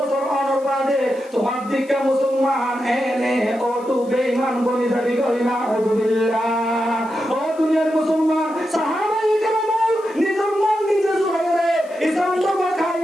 অনর বাদে তোমার দিকে মুসলমান এনে ও তু বেঈমান বনি যাবি করি না আউযুবিল্লাহ। ও দুনিয়ার মুসলমান সাহাবায়ে কেরাম নিজের মন নিজে জুড়াইরে ইসলাম ধর্ম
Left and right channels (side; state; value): left; noise; hiss, 26 dB below the sound